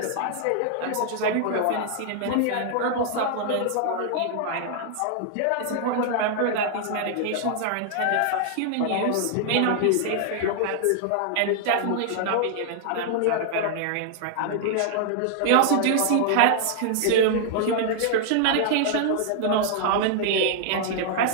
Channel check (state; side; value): different; both; correlation 0.00